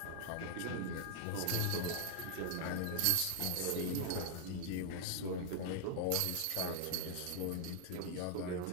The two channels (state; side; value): different; both; correlation 0.00